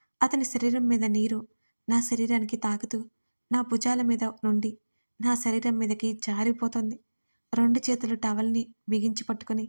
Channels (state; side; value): inverted; both; correlation -1.00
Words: అతని శరీరం మీద నీరు నా శరీరానికి తాకుతూ నా భుజాల మీద నుండి నా శరీరం మీదకి జారిపోతుంది. 2 చేతులు టవల్ని బిగించి పట్టుకుని